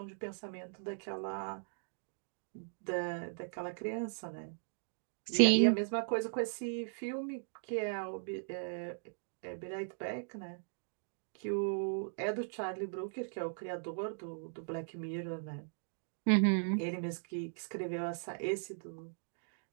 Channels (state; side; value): silent; left; digital silence